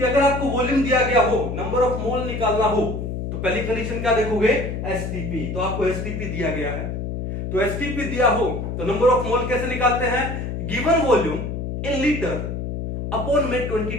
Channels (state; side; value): noise; left; hum, 4 dB below the sound